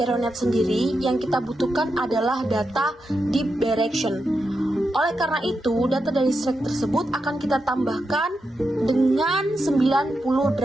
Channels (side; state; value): both; normal; correlation 0.86